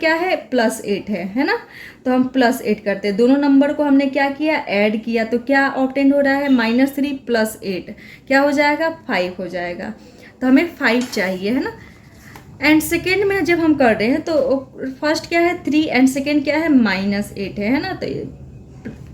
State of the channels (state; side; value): identical; both; correlation 1.00